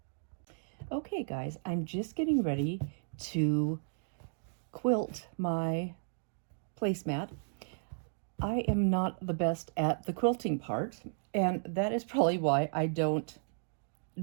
Okay, guys, I'm just getting ready to quilt my placemat. I am not the best at the quilting part, and that is probably why I don't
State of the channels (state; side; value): silent; left; digital silence